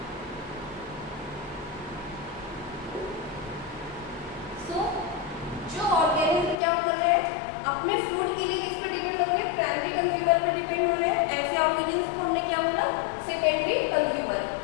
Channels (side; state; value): right; drops out; at 6.6 s